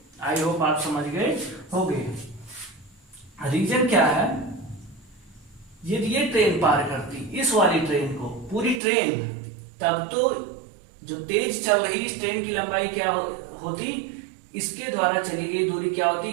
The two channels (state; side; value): drops out; left; at 8.8 s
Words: आई होप आप समझ गए होंगे। रीजन क्या है, यदि ये ट्रेन पार करती इस वाली ट्रेन को, पूरी ट्रेन, तब तो जो तेज चल रही इस ट्रेन की लंबाई क्या होती, इसके द्वारा चली गई दूरी क्या होती,